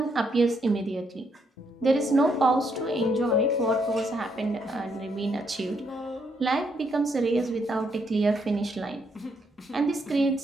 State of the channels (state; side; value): normal; both; correlation 0.75